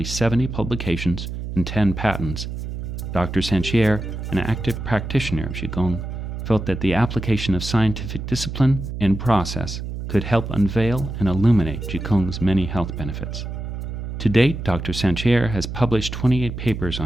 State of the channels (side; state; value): right; noise; hum, 6 dB below the sound